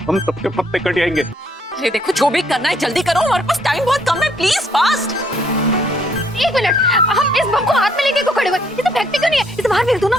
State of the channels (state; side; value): normal; both; correlation 0.68